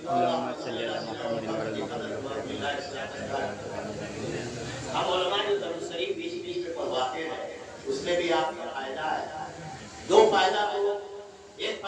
हम उलमा जो दुरूद शरीफ बीच बीच में पढ़वाते हैं, उसमें भी आपका फायदा है। दो फायदा, तो एक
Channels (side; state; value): both; identical; correlation 1.00